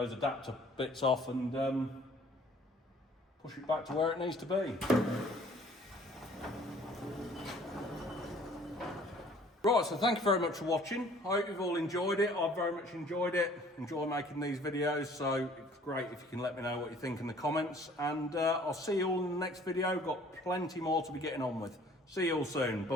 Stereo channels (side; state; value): both; normal; correlation 0.54